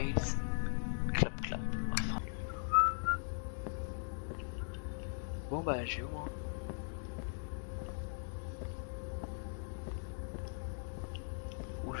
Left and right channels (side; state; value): right; silent; digital silence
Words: Clap Clap. Enfin. Bon bah j'ai où moi. Où